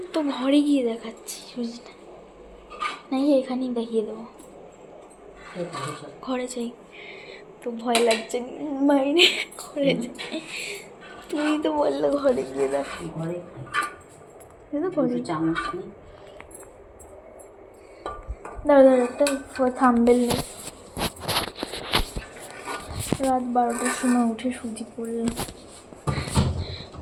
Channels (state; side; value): identical; both; correlation 1.00